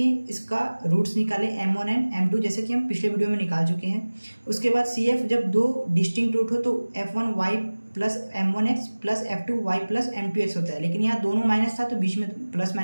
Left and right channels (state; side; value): inverted; both; correlation -1.00